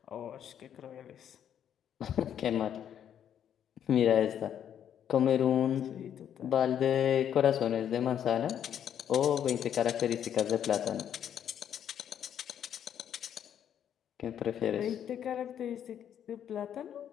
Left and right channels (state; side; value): quieter; right; 9.5 dB